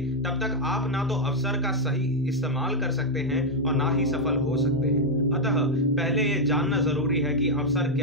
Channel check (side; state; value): both; normal; correlation 0.00